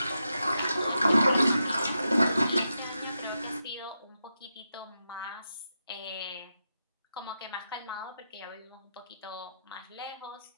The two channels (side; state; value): both; inverted; correlation -0.87